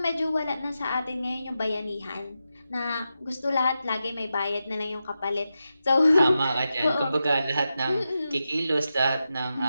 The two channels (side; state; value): both; inverted; correlation -0.89